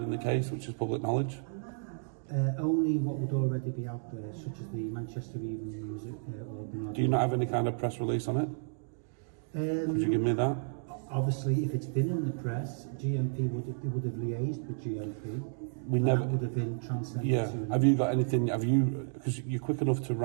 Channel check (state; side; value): silent; left; digital silence